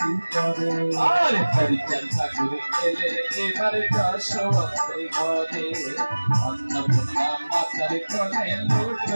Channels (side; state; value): both; inverted; correlation -1.00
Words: করে। আর হরিচর্চা করে এলেন, এবারে দর্শনে ঘরে, অন্নপূর্ণা মাতার কোলে